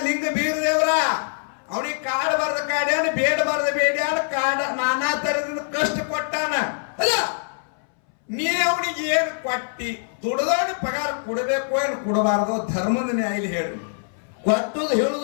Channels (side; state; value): right; silent; 62 dB below the other